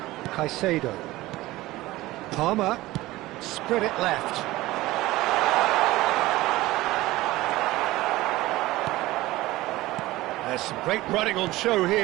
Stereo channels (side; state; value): left; quieter; 18.0 dB